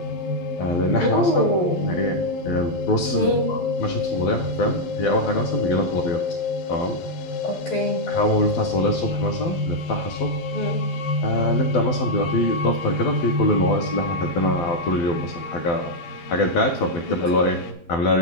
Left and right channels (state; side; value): late; right; 12 ms